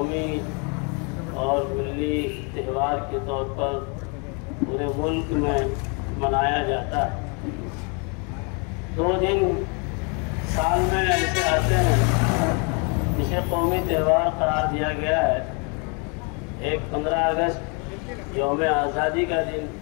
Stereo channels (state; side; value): quieter; right; 34.8 dB